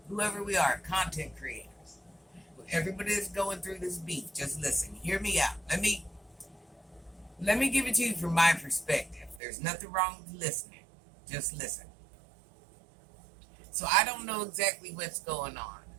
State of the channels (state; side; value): drops out; left; at 9.4 s